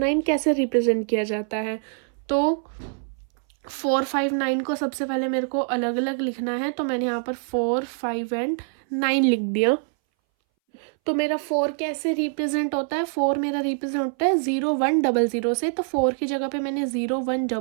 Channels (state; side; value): silent; left; 61 dB below the other